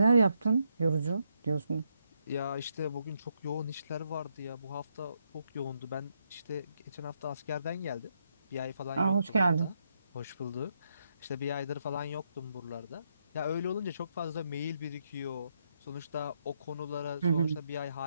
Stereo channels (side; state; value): both; inverted; correlation -0.78